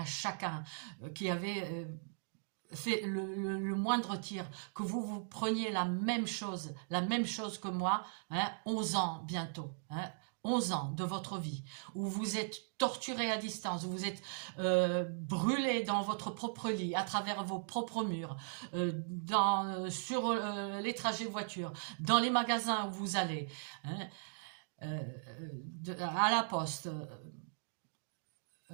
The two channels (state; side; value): silent; left; digital silence